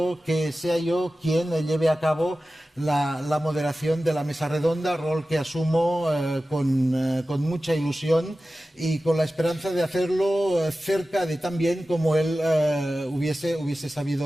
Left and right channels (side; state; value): both; normal; correlation 0.95